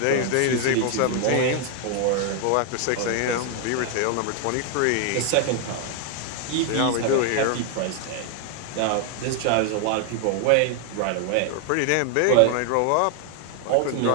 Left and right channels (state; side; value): different; both; correlation 0.00